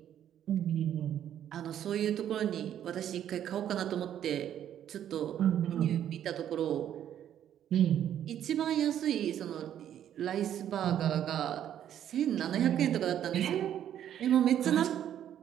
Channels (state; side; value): quieter; left; 10.4 dB